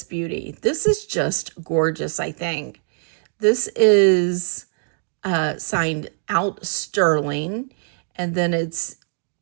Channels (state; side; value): silent; left; 60 dB below the other